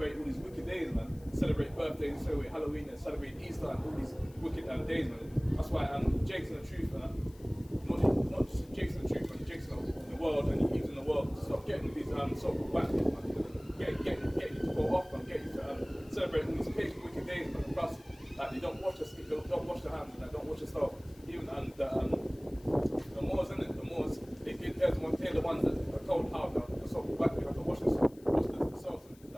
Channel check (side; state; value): left; noise; hiss, 26 dB below the sound